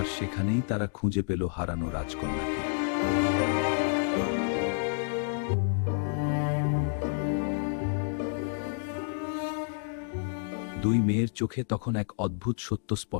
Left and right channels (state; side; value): silent; right; digital silence